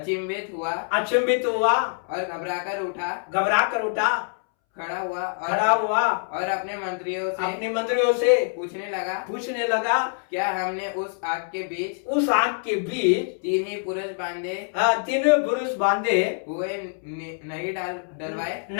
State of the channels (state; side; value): silent; right; 62 dB below the other